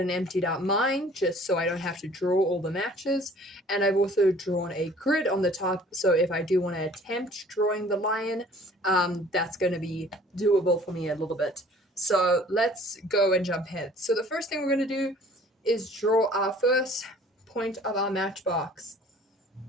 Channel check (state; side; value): normal; both; correlation 0.52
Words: emptied out mine just so I don't have to draw all the matches. And I've also drawn a grid on the top, so if I do want to attempt drawing the lion, that's going to be doable for me a little bit. So let's go and jump ahead. So the first thing we're going to do is draw our first point of our matchbox.